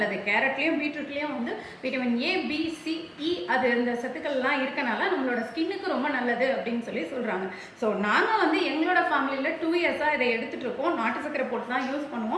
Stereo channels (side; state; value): both; identical; correlation 1.00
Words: கேரட்லேயும் பீட்ரூட்லேயும் வந்து விட்டமின் ஏ, பி, சி, இ அது இந்த சத்துக்கள்லாம் இருக்கனால நம்மளோட ஸ்கின்னுக்கு ரொம்ப நல்லது அப்படின்னு சொல்லி சொல்கிறாங்க. ஸோ நாங்கள் வந்து எங்களோட ஃபேமிலியில் 2 இயர்ஸாக இதை எடுத்துகிட்டு இருக்கோம். நாட்டு சக்கரை போட்டு தான் யூஸ்